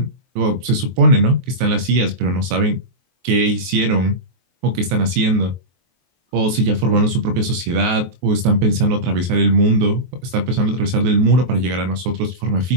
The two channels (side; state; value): left; late; 23 ms